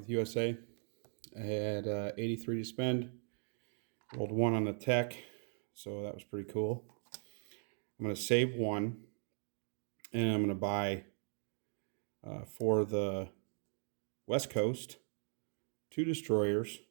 USA. I had 83 to spend. Rolled 1 on the tech, so that was pretty cool. I'm going to save 1, and I'm going to buy for the West Coast 2 destroyers,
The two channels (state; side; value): silent; left; 52 dB below the other